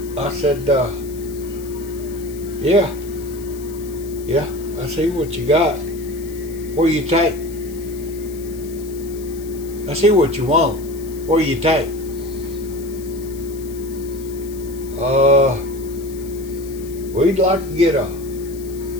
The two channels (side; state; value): left; noise; hiss, 19 dB below the sound